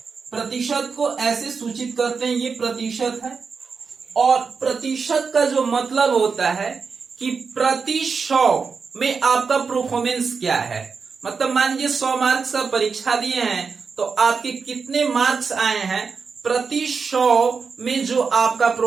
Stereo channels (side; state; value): left; quieter; 5.3 dB